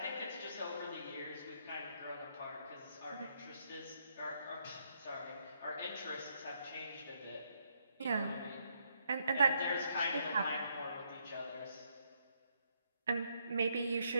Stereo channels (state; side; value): inverted; both; correlation -0.74